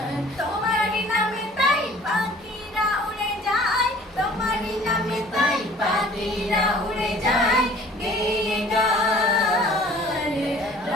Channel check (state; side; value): normal; both; correlation 0.50